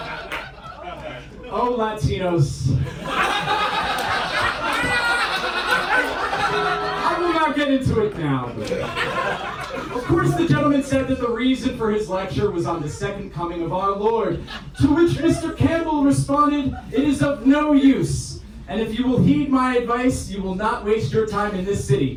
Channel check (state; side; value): identical; both; correlation 1.00